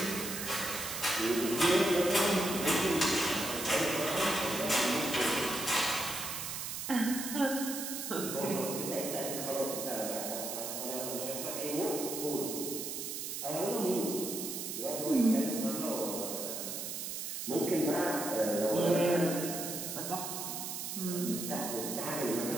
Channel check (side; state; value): right; noise; hiss, 5 dB below the sound